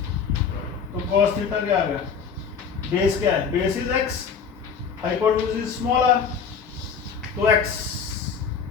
तो cos थीटा क्या आ गया? बेस क्या है? Base is x, hypotenuse is small r। तो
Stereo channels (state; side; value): quieter; right; 6.3 dB